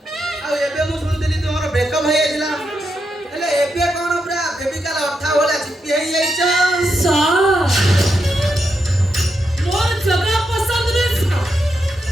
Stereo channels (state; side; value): normal; both; correlation 0.84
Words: ଆଉ ଏବେ ମୁଁ ଶୁଣୁଥିଲି ତୁମର ବ୍ରେକଅପ୍ ହେଇଯାଇଥିଲା। ହେଲେ ଏବେ କ'ଣ ପୁରା ଫେବିକାଲ ଅଠା ଭଳିଆ ଚିପି ହେଇଯାଇଛ? मोर जगह पसंद रे